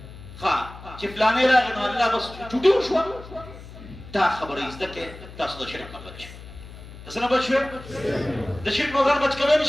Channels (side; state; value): left; noise; hum, 16 dB below the sound